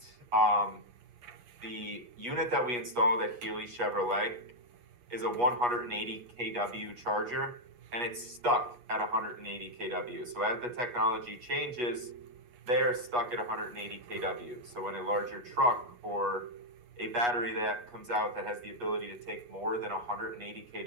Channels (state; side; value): late; left; 8.3 ms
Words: The unit that we installed at Healy Chevrolet is a 180 kW charger, and it's stuck at 180 kW. So as the technology changes, they are stuck at 180 kW. So when a larger truck or a battery that comes out that has the ability to take more than 180